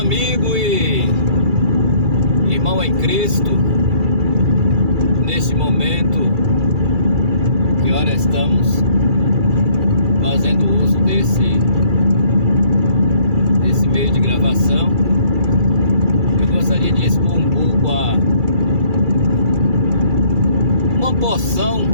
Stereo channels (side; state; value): left; late; 2.3 ms